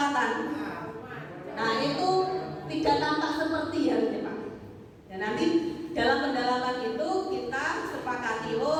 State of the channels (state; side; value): identical; both; correlation 1.00